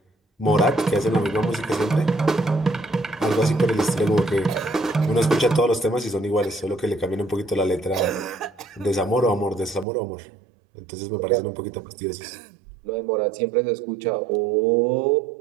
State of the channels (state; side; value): drops out; left; at 9.9 s